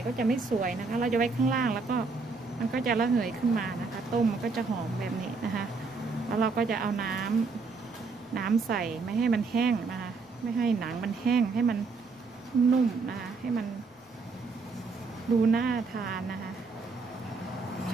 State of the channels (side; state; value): left; quieter; 4.3 dB